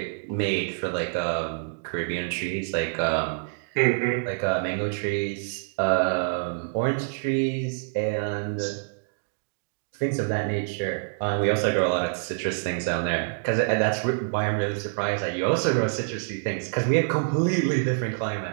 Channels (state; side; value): silent; left; digital silence